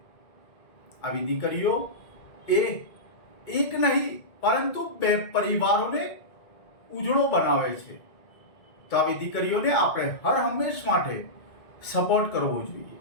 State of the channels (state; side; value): late; right; 2.1 ms